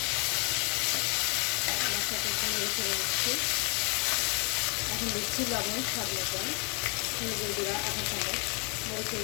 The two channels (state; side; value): quieter; right; 34.8 dB